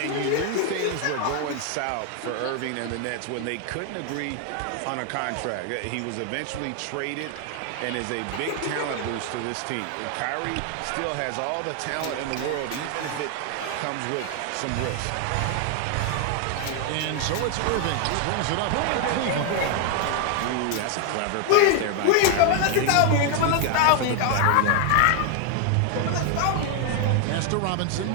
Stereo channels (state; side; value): different; both; correlation 0.00